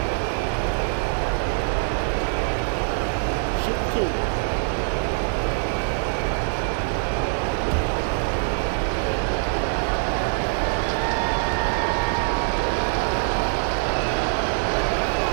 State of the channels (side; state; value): left; silent; 63 dB below the other